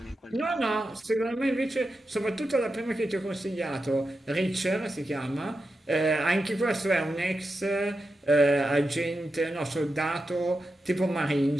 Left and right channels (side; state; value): both; normal; correlation 0.89